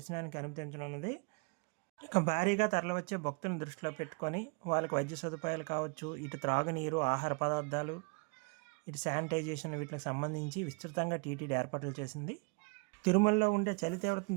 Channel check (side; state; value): left; quieter; 32.2 dB